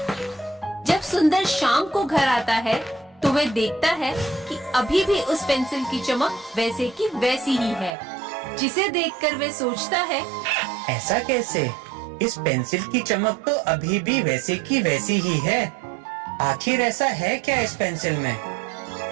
जब सुंदर शाम को घर आता है तो वह देखता है कि अभी भी उस पेंसिल की चमक वैसे की वैसी ही है, जिसे देखकर वह सोचता है, ऐसा कैसे? इस पेंसिल की चमक तो अभी भी वैसे की वैसी ही है। आखिर ऐसा है क्या इस पेंसिल में?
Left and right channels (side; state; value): left; drops out; at 7.9 s